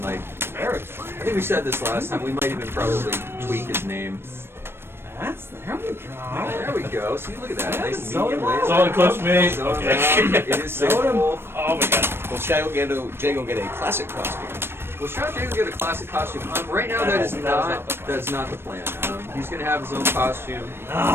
like I think we said this last time. We might even probably tweak his name. There we go. There we go. See, look at that. Nice Soda medium Malt. laser. Solid close me. Soda Okay. Malt. It is Soda Wolf. Oh my god. Will Shadow Jago get a classic costume? Well, Shadow Jago get a classic costume. Right now, that's not the plan. He's going to have his own costume.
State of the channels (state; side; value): late; left; 0.12 ms